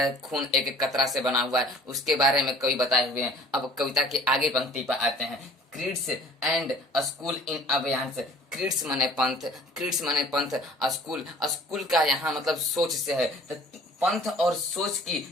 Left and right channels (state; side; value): normal; both; correlation 0.50